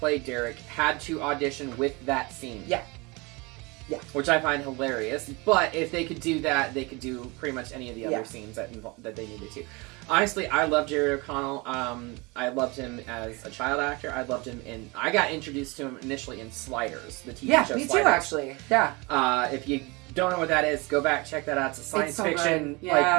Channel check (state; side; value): quieter; left; 26.4 dB